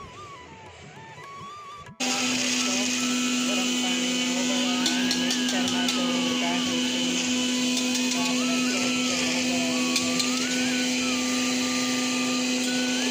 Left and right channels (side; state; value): both; identical; correlation 1.00